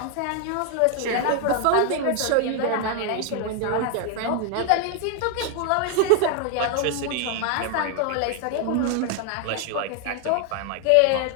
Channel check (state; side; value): different; both; correlation 0.00